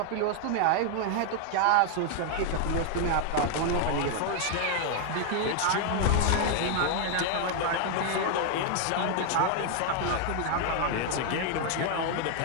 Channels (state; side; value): different; both; correlation 0.00